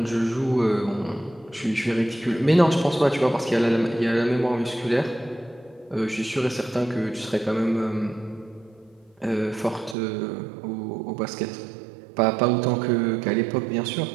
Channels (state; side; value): drops out; left; at 10.0 s